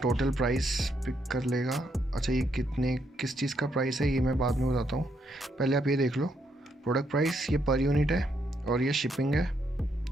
टोटल प्राइस पिक कर लेगा। अच्छा, ये किस चीज़ का प्राइस है ये मैं बाद में बताता हूँ। पहले आप ये देख लो, प्रोडक्ट प्राइस ये पर यूनिट है और ये शिपिंग है।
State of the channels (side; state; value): both; normal; correlation 0.76